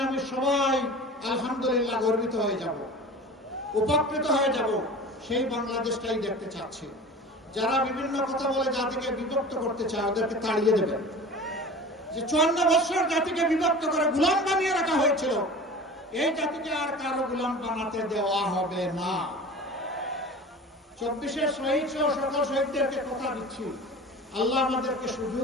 আমি সবাই আলহামদুলিল্লাহ গর্বিত হয়ে যাব, উপকৃত হয়ে যাব। সেই বাংলাদেশটাই দেখতে চাচ্ছি। যারা বিভিন্ন কথা বলে জাতিকে বিভক্ত করতে চায় ওদেরকে তাড়িয়ে দেবেন। যে 54 বছর জাতিকে বিভক্ত করে গোলাম বানিয়ে রাখা হয়েছিল, এই জাতিকে আর কারো গোলাম বানাতে দেওয়া হবে না। 24 শহীদ সহ সকল শহীদদেরকে কথা দিচ্ছি, আল্লাহ আমাদেরকে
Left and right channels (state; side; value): normal; both; correlation 0.37